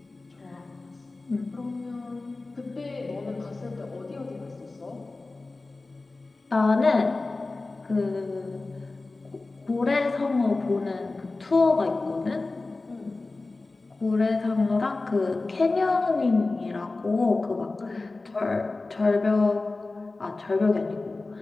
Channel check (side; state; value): right; quieter; 3.4 dB